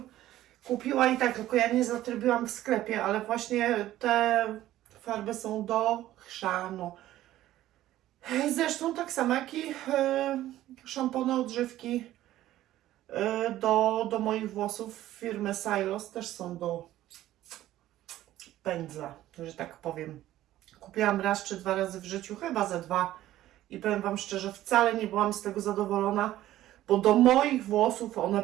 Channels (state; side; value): quieter; left; 14.2 dB